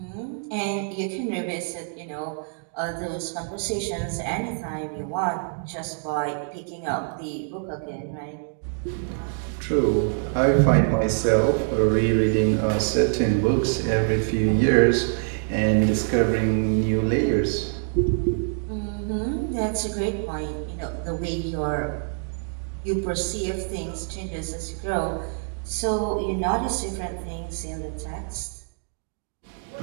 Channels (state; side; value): silent; left; 61 dB below the other